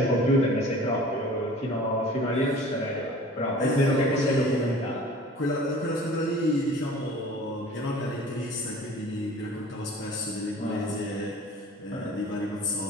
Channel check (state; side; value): normal; both; correlation 0.44